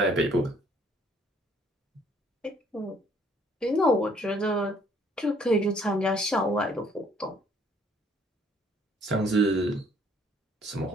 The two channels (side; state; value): both; normal; correlation 0.62